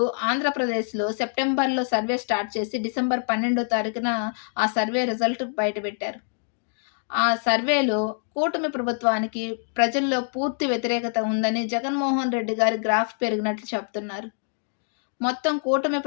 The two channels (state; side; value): silent; right; digital silence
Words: ఆంధ్రప్రదేశ్‌లో సెప్టెంబర్‌లో సర్వే స్టార్ట్ చేసి డిసెంబర్ 12వ తారీఖున ఆ సర్వే రిజల్ట్ బయటపెట్టారు. ఆ సర్వేలో కూటమి ప్రభుత్వానికి ప్రజల్లో పూర్తి వ్యతిరేకత ఉందని జగన్మోహన్ రెడ్డి గారి గ్రాఫ్ పెరిగినట్లు చెప్తున్నారు. మొత్తం కూటమి